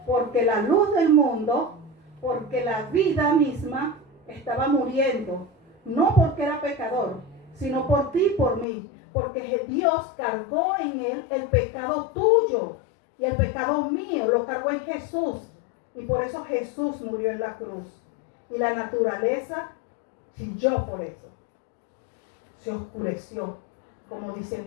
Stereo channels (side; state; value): right; drops out; at 8.7 s